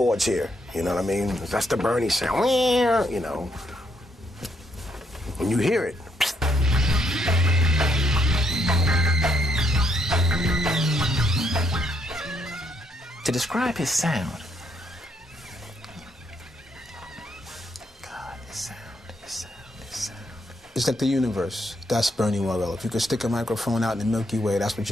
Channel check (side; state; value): both; normal; correlation 0.74